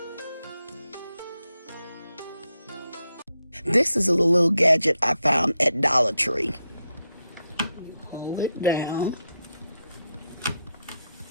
This is a little gadget I found at Dollar Tree. Hold it down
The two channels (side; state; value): both; inverted; correlation -0.84